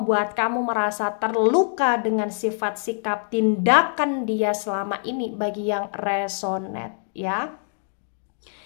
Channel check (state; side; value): silent; right; 62 dB below the other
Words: kamu merasa terluka dengan sifat, sikap, tindakan dia selama ini bagi yang resonate ya.